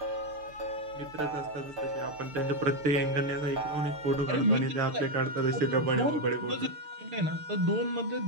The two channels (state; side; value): late; left; 6.7 ms